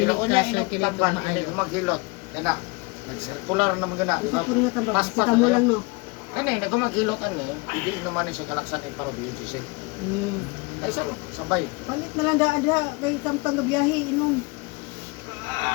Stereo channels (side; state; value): right; quieter; 26.7 dB